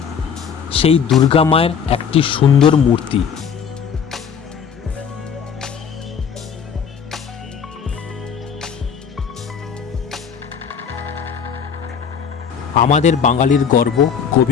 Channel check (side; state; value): right; quieter; 7.1 dB